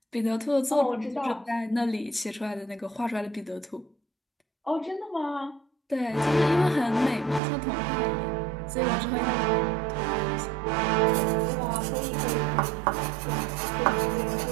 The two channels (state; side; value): drops out; left; at 7.4 s